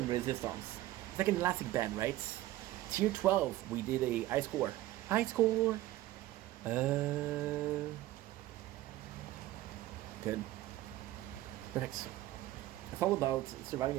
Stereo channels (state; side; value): quieter; left; 15.6 dB